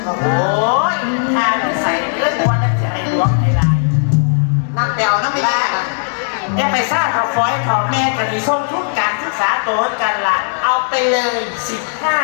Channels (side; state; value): right; silent; digital silence